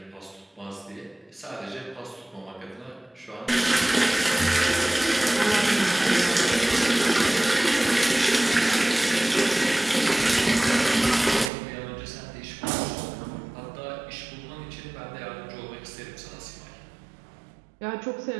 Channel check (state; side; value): drops out; left; at 11.5 s